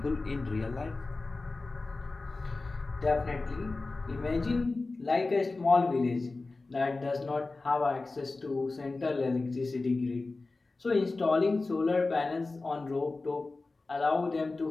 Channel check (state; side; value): quieter; right; 3.5 dB